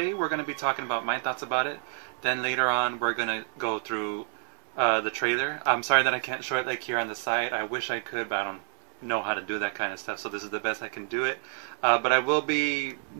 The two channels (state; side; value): silent; left; 59 dB below the other